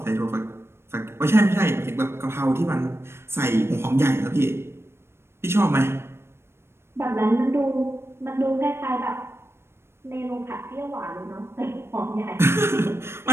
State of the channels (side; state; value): left; late; 0.12 ms